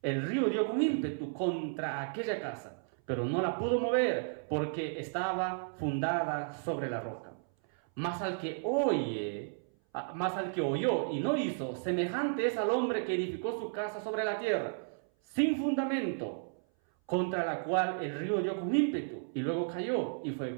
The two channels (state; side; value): silent; left; 56 dB below the other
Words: el río dio con ímpetu contra aquella casa, pero no la pudo mover porque estaba fundada sobre la roca. Mas al que oyó y no hizo, semejante es al hombre que edificó su casa sobre la tierra, sin fundamento, contra la cual el río dio con ímpetu y luego cayó, y fue